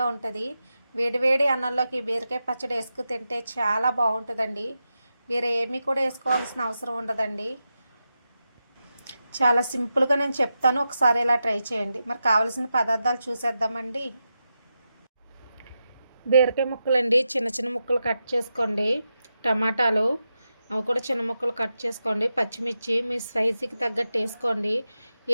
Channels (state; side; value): inverted; both; correlation -0.89